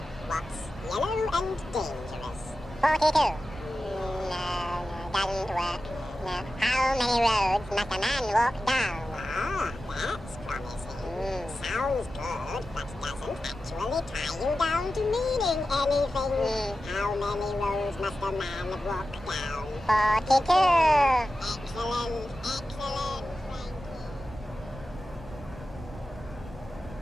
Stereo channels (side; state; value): both; normal; correlation 0.93